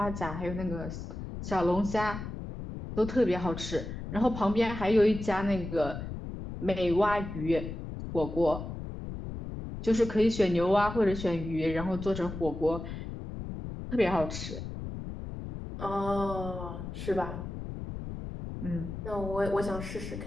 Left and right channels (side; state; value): left; noise; rumble, 8 dB below the sound